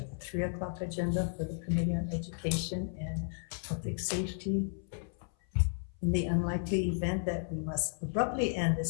the 3 o'clock agenda for the Committee on Education and Public Safety. In the unlikely event that we must abruptly end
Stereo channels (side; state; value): right; silent; 55 dB below the other